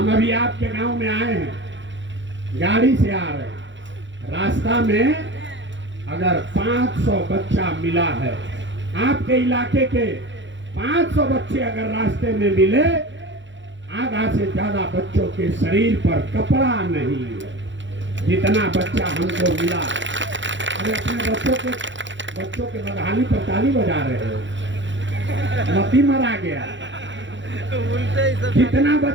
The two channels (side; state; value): left; late; 0.54 ms